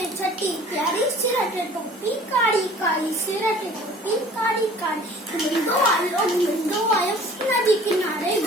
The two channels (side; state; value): both; normal; correlation 0.49